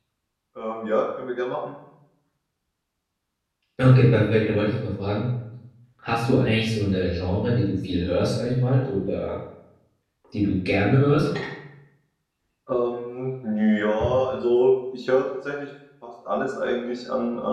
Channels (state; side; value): identical; both; correlation 1.00